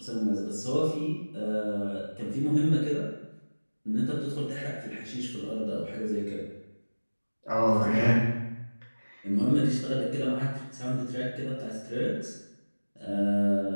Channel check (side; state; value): both; inverted; correlation -1.00